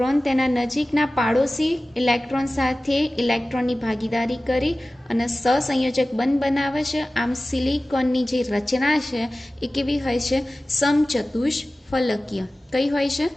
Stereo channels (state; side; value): normal; both; correlation 0.96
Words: તેના નજીકના પાડોશી ઇલેક્ટ્રોન સાથે ઇલેક્ટ્રોનની ભાગીદારી કરી અને સહસંયોજક બંધ બનાવે છે. આમ સિલિકોનની જે રચના છે એ કેવી હોય છે? સમચતુષ્ફલકીય. કઈ હોય છે?